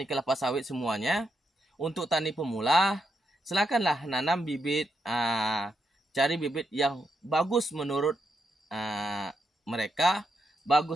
kelapa sawit semuanya, untuk tani pemula silakanlah nanam bibit, cari bibit yang bagus menurut mereka,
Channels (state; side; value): normal; both; correlation 0.82